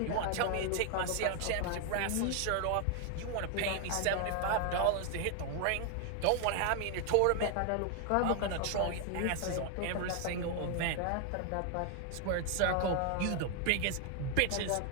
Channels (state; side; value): different; both; correlation 0.00